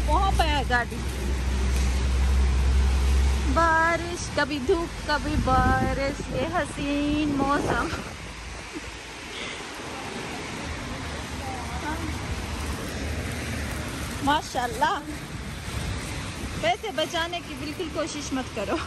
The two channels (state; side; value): identical; both; correlation 1.00